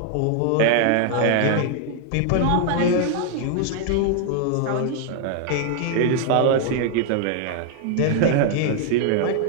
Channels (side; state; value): both; different; correlation 0.00